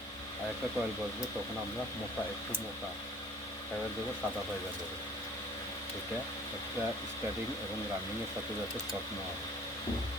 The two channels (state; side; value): normal; both; correlation 0.51